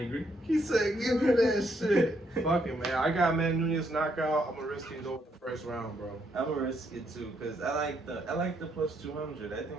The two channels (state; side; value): normal; both; correlation 0.74